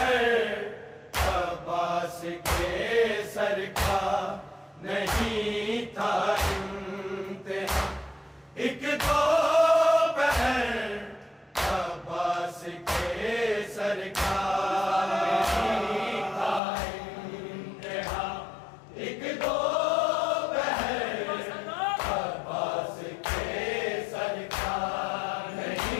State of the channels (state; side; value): drops out; right; at 16.6 s